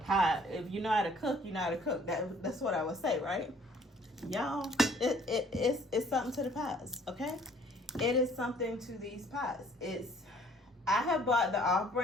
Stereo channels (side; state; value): both; normal; correlation 0.58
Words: If you know how to cook, you know how to cook. That's what I would say, right? Y'all, it's something to the pots, okay? It is something to these pots. I have bought the